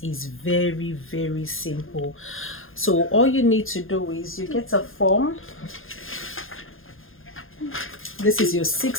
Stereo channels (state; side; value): late; right; 0.60 ms